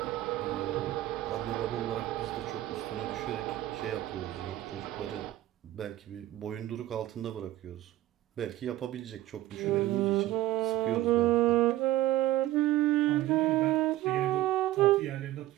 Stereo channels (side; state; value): left; quieter; 15.2 dB